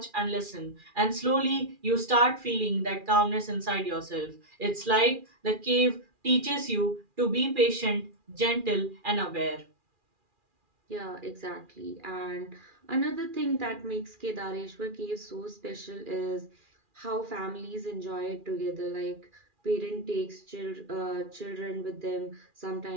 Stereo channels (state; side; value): late; left; 2.4 ms